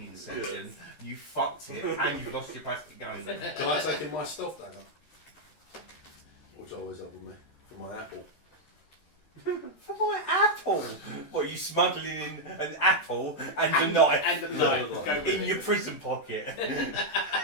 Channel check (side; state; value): right; late; 13 ms